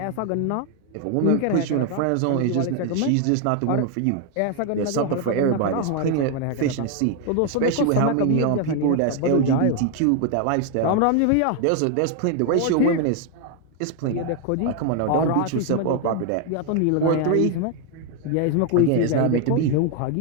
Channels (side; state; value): both; different; correlation 0.01